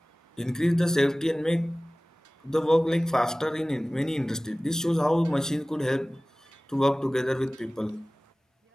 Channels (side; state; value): both; normal; correlation 0.98